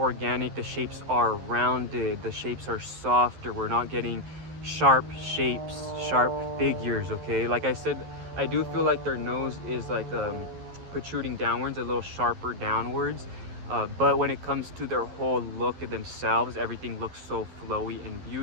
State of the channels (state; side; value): late; left; 11 ms